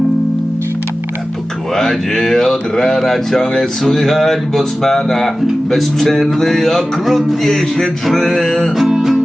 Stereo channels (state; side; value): normal; both; correlation 0.96